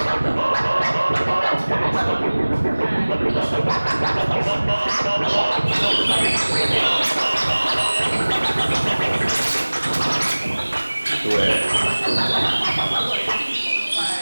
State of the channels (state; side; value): inverted; both; correlation -1.00